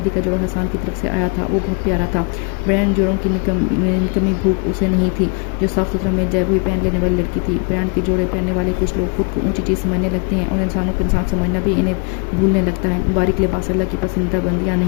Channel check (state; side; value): quieter; right; 34.4 dB